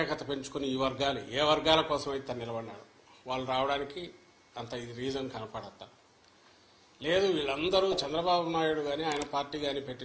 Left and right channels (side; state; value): both; identical; correlation 1.00